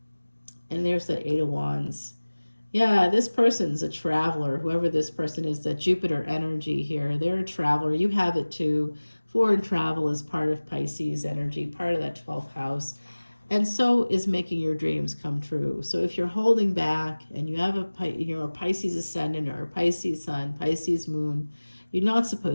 And there's the 8 of Wands. Yeah, this person's a traveler, whoever this person is, that Jupiter energy here. They're a traveler. You have it too. Foreign travel is part of Pisces energy, part of that 12th house. And so is making your dreams come true. So if you're holding back and you have a Pisces ascendant or a Pisces sun, Pisces moon, you're not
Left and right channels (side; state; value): both; inverted; correlation -1.00